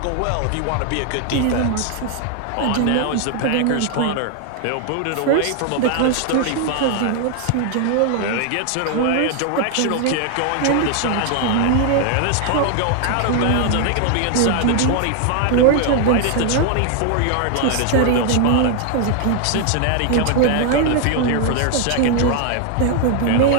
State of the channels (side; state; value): both; different; correlation 0.00